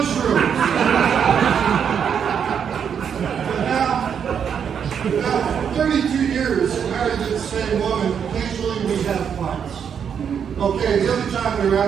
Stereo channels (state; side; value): quieter; left; 7.6 dB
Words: But now, 32 years married to the same woman, occasionally we have fights. Okay, the other time we were